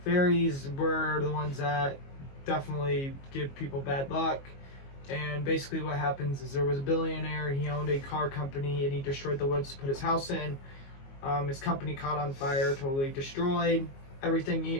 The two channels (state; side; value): late; right; 22 ms